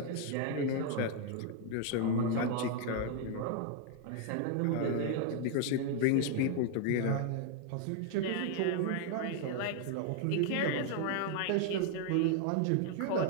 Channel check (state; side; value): different; both; correlation 0.00